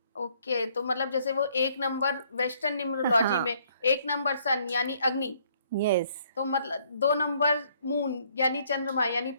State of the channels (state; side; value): inverted; both; correlation -0.66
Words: ओके, तो मतलब जैसे वो 1 नंबर वेस्टर्न न्यूमरोलॉजी में 1 नंबर सन यानी अग्नि, यस। तो मतलब 2 नंबर मून यानी चंद्रमा यानी